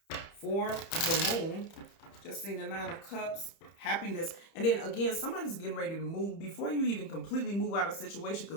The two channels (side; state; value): right; late; 30 ms